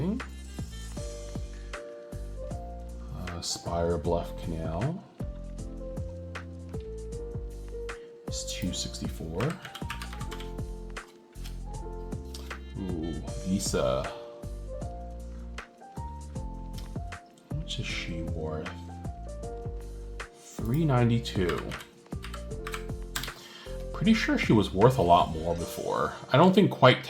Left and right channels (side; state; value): both; identical; correlation 1.00